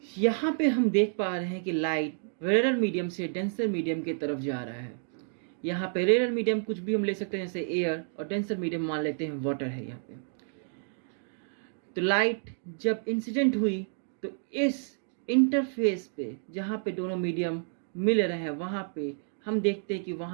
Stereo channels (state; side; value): silent; left; digital silence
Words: यहाँ पे हम देख पा रहे हैं कि लाइट रेयर मीडियम से डेंसर मीडियम की तरफ जा रहा है। यहाँ पे रेयर मीडियम कुछ भी हम ले सकते हैं, जैसे एयर, और डेंसर मीडियम मान लेते हैं वाटर है यहाँ पे। तो लाइट जब इंसिडेंट हुई तो इस इंटरफेस पे जहाँ पे दोनों मीडियम मिल रहे हैं वहाँ पे हम देखते हैं कि